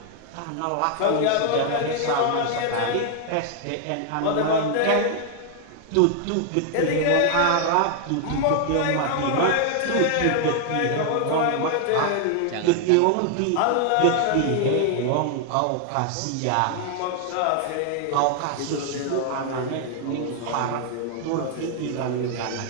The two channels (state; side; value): different; both; correlation 0.00